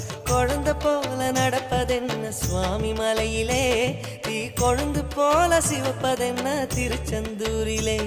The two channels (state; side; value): identical; both; correlation 1.00